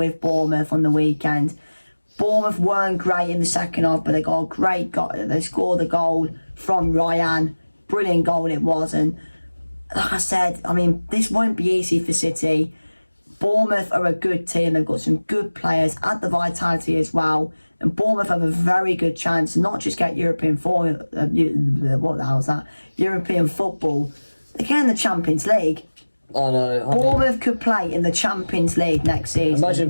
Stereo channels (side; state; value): both; inverted; correlation -1.00